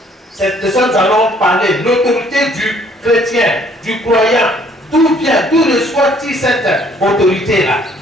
C'est de ça que nous allons parler. L'autorité du chrétien, du croyant. D'où vient, d'où reçoit-il cette autorité-là?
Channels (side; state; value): both; normal; correlation 0.61